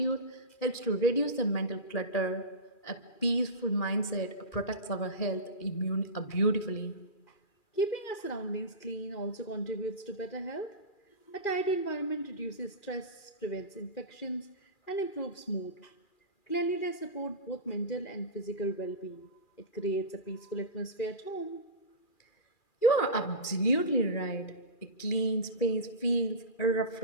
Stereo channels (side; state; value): right; late; 2.4 ms